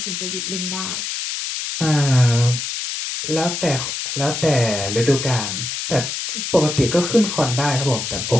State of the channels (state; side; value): noise; left; hiss, 4 dB below the sound